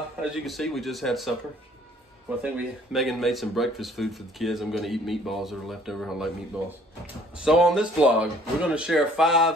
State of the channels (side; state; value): both; normal; correlation 0.57